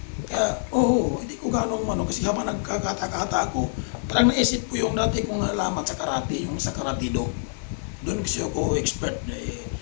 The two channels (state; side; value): silent; right; 61 dB below the other